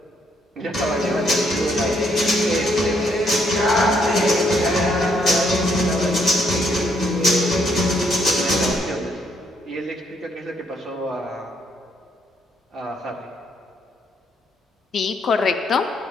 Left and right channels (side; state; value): both; normal; correlation 0.71